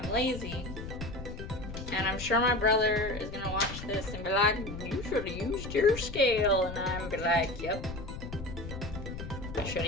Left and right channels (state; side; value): noise; left; rumble, 9 dB below the sound